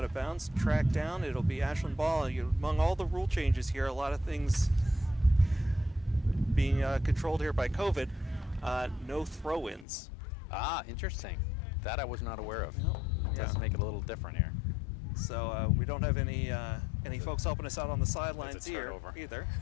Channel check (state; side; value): drops out; right; at 9.9 s